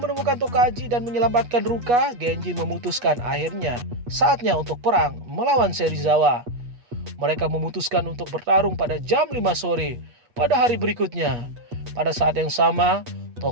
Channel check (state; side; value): late; left; 8.3 ms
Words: Tokaji dan menyelamatkan Ruka, Genji memutuskan akhirnya saatnya untuk perang melawan Serizawa. Mereka memutuskan untuk bertarung pada jam 5 sore pada hari berikutnya. Pada saat yang sama,